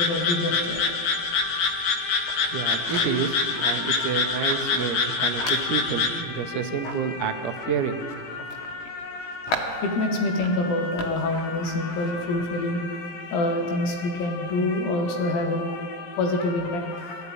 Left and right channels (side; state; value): right; late; 17 ms